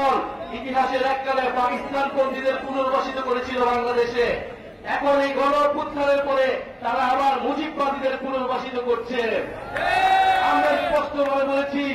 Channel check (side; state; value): both; identical; correlation 1.00